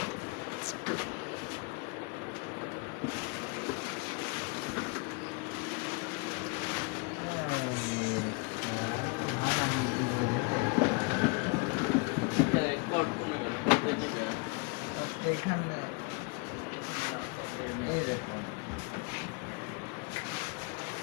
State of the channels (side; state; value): right; quieter; 30.1 dB